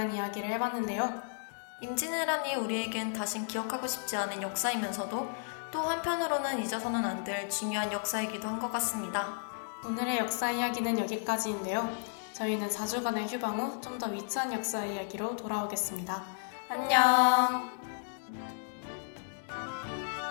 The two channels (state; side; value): silent; right; digital silence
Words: 이야기를 해봤는데요. 임진왜란이 우리에겐 다신 기억하고 싶지 않은 역사이면서도 또 한편으로는 잊어서는 안 될 중요한 역사이기도 한 것 같습니다. 오늘의 역사 이야기는 여기까지인데요. 저희는 4주간의 휴방 후 좀 더 위트한 역사 이야기로 돌아오겠습니다. 안녕!